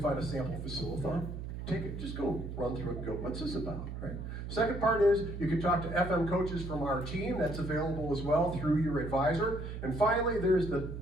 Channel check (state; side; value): noise; right; hum, 7 dB below the sound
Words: find a sample Facilathon. Take it, just go run through it and go, what's this about, right? Second part is you can talk to FM coaches from our team. That's available as well through your advisor. And finally, there's the